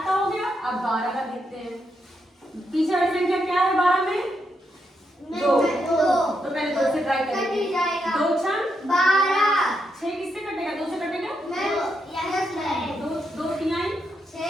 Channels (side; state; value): both; normal; correlation 0.81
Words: का हो गया। अब 12 का देखते हैं, पीछे वाली संख्या क्या है 12 में? 2। तो पहले 2 से ट्राई करेंगे, 2 6 12, 6 किससे कटेगा? 2 से कटेगा 2 3 6,